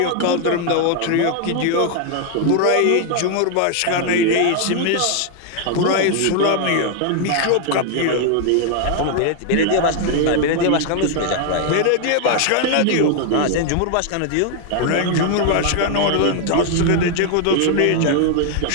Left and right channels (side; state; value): both; different; correlation 0.00